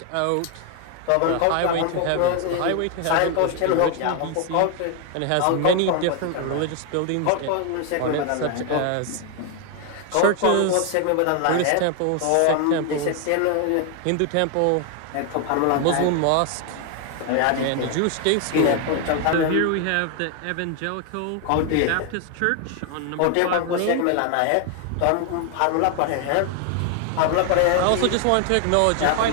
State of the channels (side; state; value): both; different; correlation 0.01